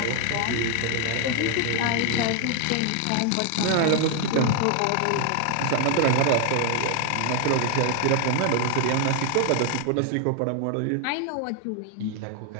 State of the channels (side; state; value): both; different; correlation 0.00